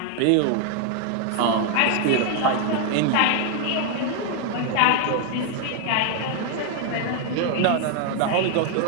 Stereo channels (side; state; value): both; different; correlation 0.00